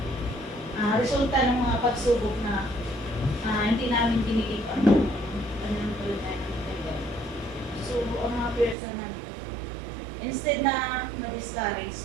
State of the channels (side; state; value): left; drops out; at 8.8 s